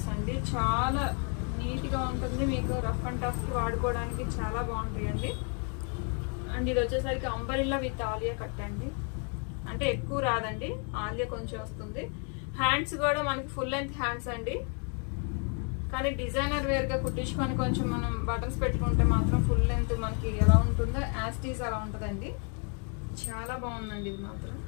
అండి, చాలా నీట్ గా ఉంటుంది మీకు, రఫ్ అండ్ టఫ్ కి వాడుకోవడానికి చాలా బాగుంటాయండి. అండ్ ఇది వచ్చేసరికి అంబరిల్లా విత్ ఆలియా కట్ అండి, అంటే ఎక్కువ రాదండి, ఆలియా కొంచెం వస్తుంది. హ్యాండ్స్ కూడా మనకి ఫుల్ లెంత్ హ్యాండ్స్ అండి, కానీ డిజైనర్ వేర్ గా కుట్టించుకొని కొంచెం మనం బటన్స్ పెట్టుకుంటే మాత్రం ఫుల్ లెంత్ మనకి ఎలా ఉంటుందో యాస్టీస్ అలా ఉంటుందండి. చాలా బాగుందండి ఇది మాత్రం.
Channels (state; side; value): quieter; right; 38.7 dB